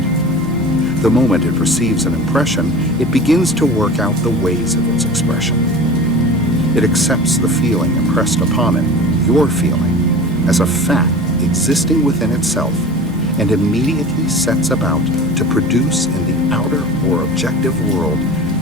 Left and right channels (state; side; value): normal; both; correlation 0.36